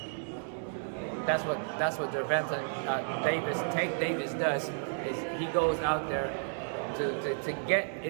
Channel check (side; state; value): left; silent; 56 dB below the other